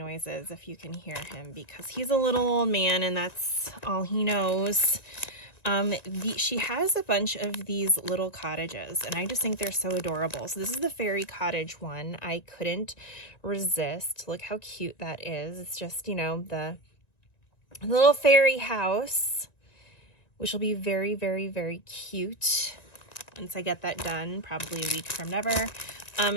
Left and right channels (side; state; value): right; late; 1.9 ms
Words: if you can hear him, because he's a little old man and that's all he knows. She has a bunch of these little cottages, and I just think they're so adorable. So this is the fairy cottage one. I couldn't resist. Look how cute that is. It's just, you know, the little fairy house which will be very, very, very cute once I get that done, probably a week from never.